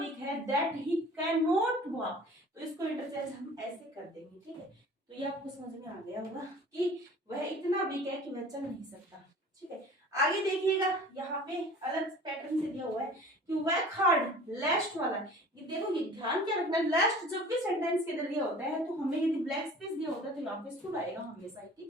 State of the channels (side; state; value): both; normal; correlation 0.45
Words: है that he can not walk, तो इसको इंटरचेंज हम ऐसे कर देंगे, ठीक है। तो ये आपको समझ में आ गया होगा कि वह इतना वीक है कि वह चल नहीं सकता, ठीक है। आगे देखिएगा यहाँ पे अलग पैटर्न से दिया हुआ है कि वर्क हार्ड, लास्ट वाला, ये देखो ये ध्यान क्या रखना है, लास्ट जब भी सेंटेंस के अंदर दिया होता है तो हमें यदि ब्लैक स्पेस दिया होता है तो यहाँ पे शुड आएगा हमेशा,